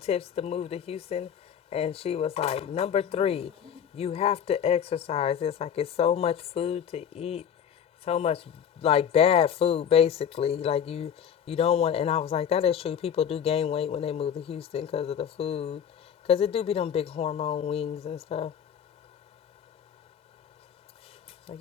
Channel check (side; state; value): right; quieter; 8.5 dB